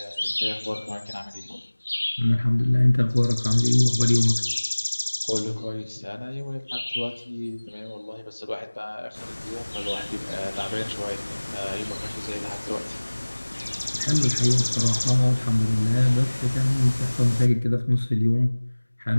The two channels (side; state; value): both; inverted; correlation -1.00